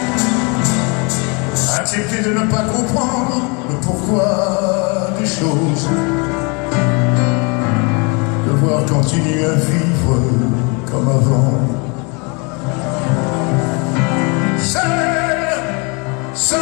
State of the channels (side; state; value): right; quieter; 31.4 dB